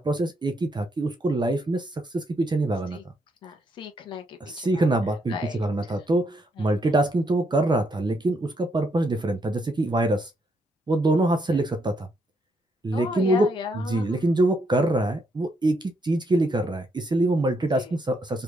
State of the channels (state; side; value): normal; both; correlation 0.76